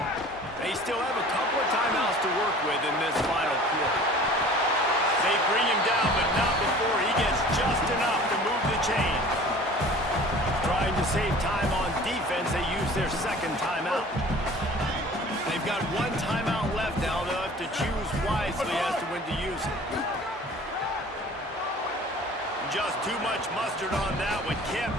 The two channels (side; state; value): both; normal; correlation 0.45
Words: They still have a couple of timeouts to work with in this final quarter. They bring him down, but not before he gets just enough to move the chain. Trying to save time on defense, they use their 2nd timeout. They've got 1 timeout left now. They'll have to choose wisely as to when to use it. Just too much mustard on that one. Can't